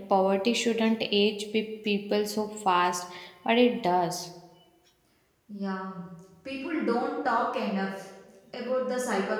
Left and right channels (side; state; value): both; identical; correlation 1.00